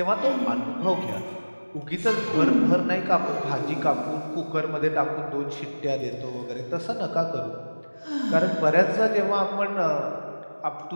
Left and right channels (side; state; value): both; inverted; correlation -1.00